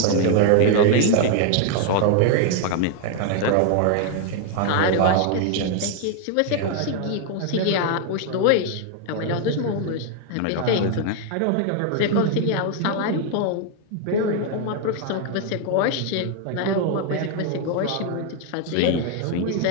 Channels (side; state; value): both; different; correlation 0.00